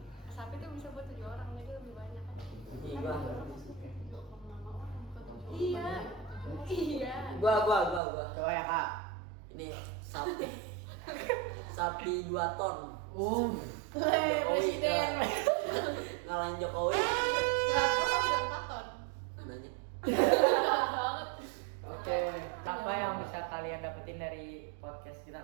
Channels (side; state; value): left; drops out; at 8.0 s